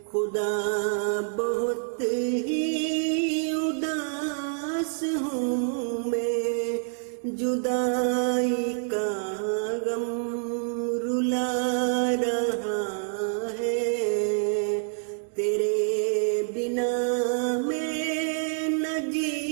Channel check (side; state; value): left; silent; 60 dB below the other